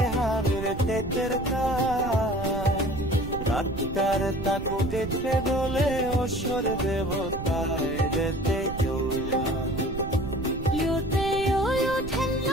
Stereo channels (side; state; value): right; noise; rumble, 8 dB below the sound